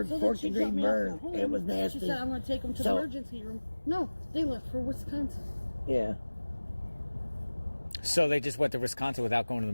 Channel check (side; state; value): both; inverted; correlation -1.00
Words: So then fourth she degree dropped me off burn. at home. It was nasty. She said, I'm going to take him to the emergency room. No, they left for Wisconsin. Yeah. So they just went to Wisconsin without going to the